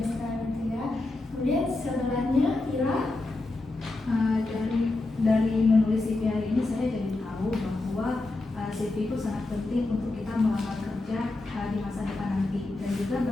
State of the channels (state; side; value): quieter; right; 3.0 dB